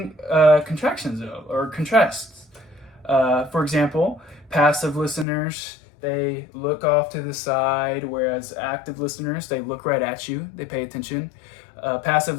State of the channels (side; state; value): right; drops out; at 5.2 s